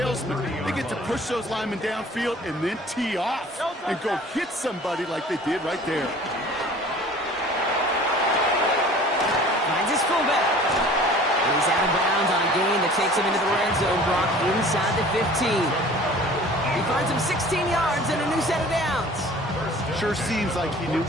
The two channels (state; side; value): normal; both; correlation 0.47